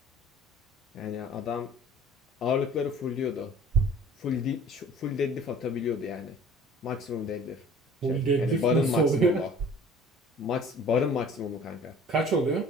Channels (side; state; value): both; normal; correlation 0.48